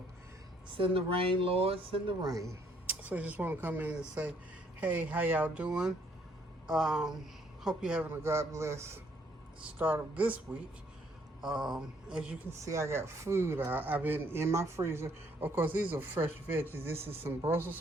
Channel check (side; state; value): both; normal; correlation 0.67